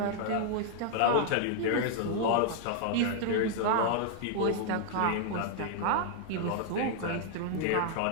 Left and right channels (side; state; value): both; different; correlation 0.00